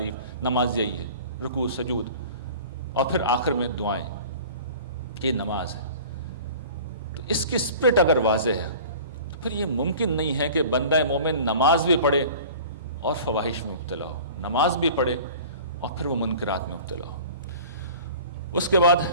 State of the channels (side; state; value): both; inverted; correlation -0.43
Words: نماز یہی ہے، رکوع سجود، اور پھر آخر میں دعائیں، یہ نماز ہے۔ تو اس کی اسپرٹ اگر واضح ہے تو پھر یہ ممکن نہیں ہے کہ بندہ مومن نماز بھی پڑھے اور فواحش میں مبتلا ہو، نماز بھی پڑھے اور پھر وہ منکرات میں مبتلا ہو۔ اس کے بعد